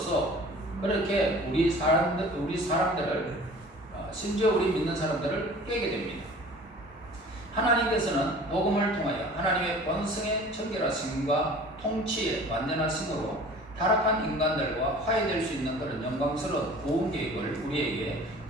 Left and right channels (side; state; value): both; normal; correlation 0.45